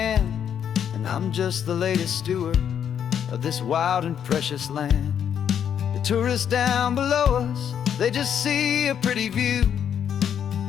and I'm just the latest steward of this wild and precious land. The tourists down below us, they just see a pretty view.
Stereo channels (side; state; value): right; quieter; 8.7 dB